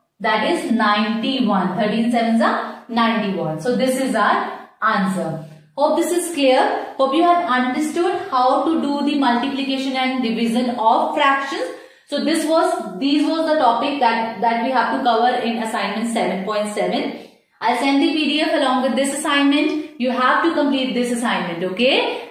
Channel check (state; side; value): identical; both; correlation 1.00